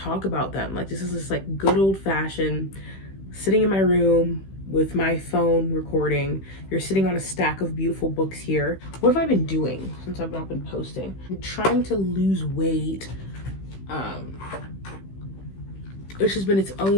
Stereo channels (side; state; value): right; late; 16 ms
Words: about them. Like this is just like good old fashioned sitting in my room with my phone recording. You're sitting on a stack of beautiful books here. What have I been doing since I've not been posting? I'm trying to lose weight, which has been its